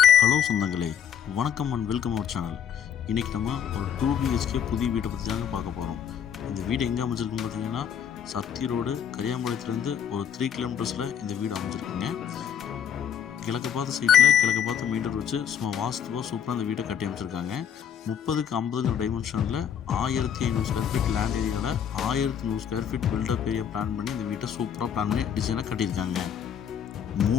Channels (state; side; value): quieter; right; 8.7 dB